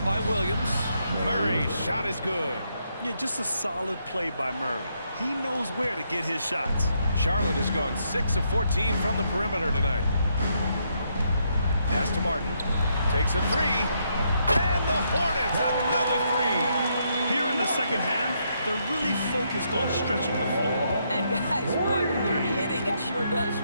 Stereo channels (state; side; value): inverted; both; correlation -0.76